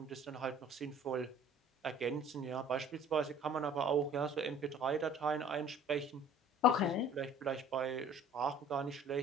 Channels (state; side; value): normal; both; correlation 0.50